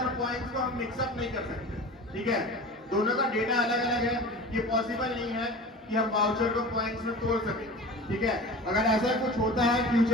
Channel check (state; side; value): normal; both; correlation 0.36